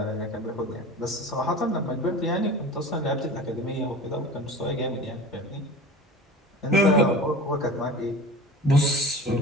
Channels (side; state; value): both; normal; correlation 0.36